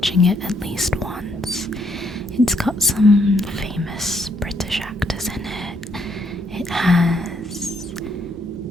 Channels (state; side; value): normal; both; correlation 0.72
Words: it at least once. It's got some famous British actors in it. It has